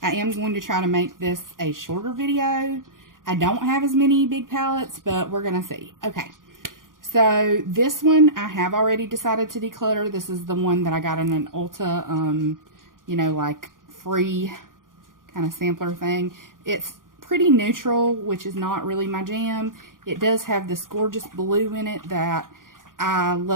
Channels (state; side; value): late; left; 0.90 ms